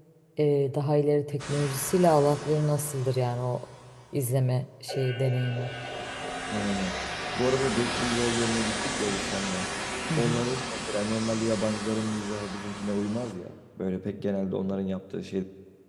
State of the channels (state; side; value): identical; both; correlation 1.00